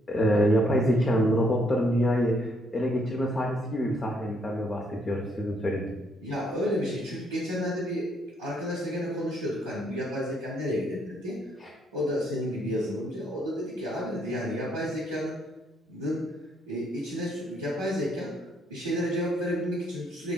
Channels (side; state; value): both; normal; correlation 0.71